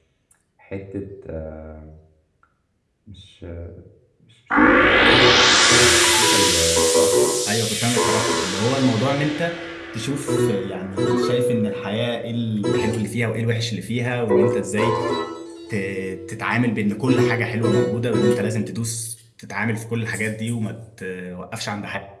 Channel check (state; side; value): identical; both; correlation 1.00